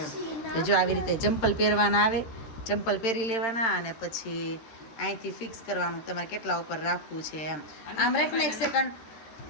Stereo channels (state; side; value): late; right; 13 ms